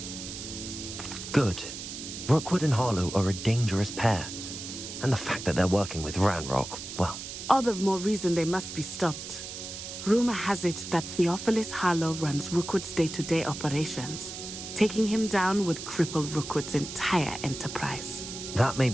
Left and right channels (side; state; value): right; noise; hiss, 9 dB below the sound